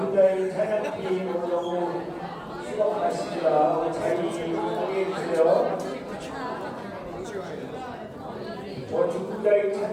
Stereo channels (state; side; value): identical; both; correlation 1.00